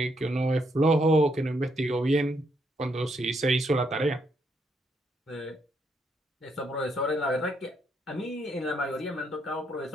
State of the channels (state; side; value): normal; both; correlation 0.75